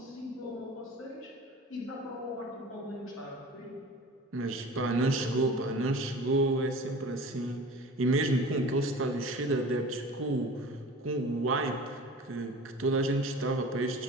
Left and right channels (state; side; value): normal; both; correlation 0.40